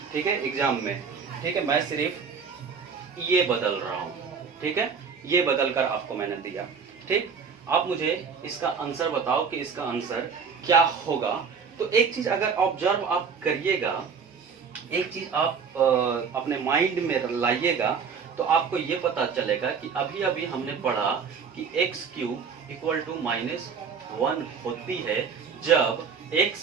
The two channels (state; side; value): quieter; left; 6.0 dB